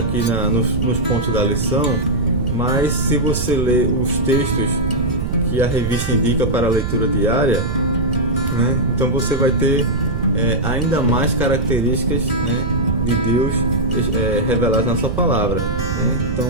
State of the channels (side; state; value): right; noise; rumble, 2 dB below the sound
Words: nos pontos da lição, mas se você ler os textos que a revista indica para a leitura diária, então você vai ter ainda mais características de Deus reveladas na sua palavra.